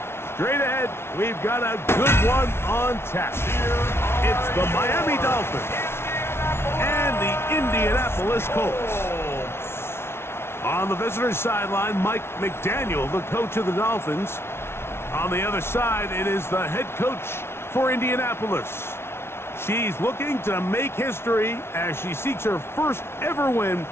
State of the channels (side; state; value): right; late; 0.12 ms